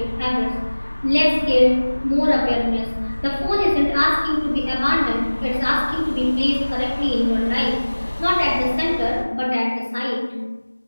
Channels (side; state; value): both; inverted; correlation -1.00